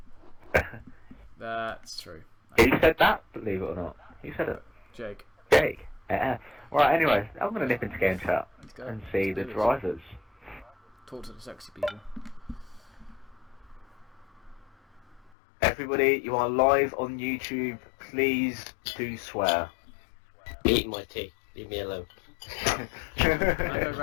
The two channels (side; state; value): right; drops out; at 15.3 s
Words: That's true. Who said that? Believe it or not. Who said it? Jake. Jake? Yeah. Right, anyway, I'm going to nip into game chat and see the drivers. Talk to the sexy people. Everybody, you are live on YouTube. Please do swear. Eating my tea. Leave me alone. Can I go